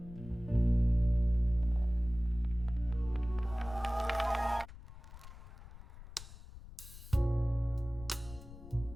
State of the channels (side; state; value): left; noise; rumble, 16 dB below the sound